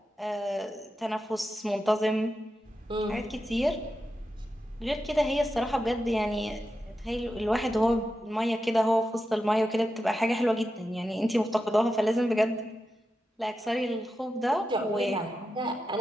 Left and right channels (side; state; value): both; normal; correlation 0.89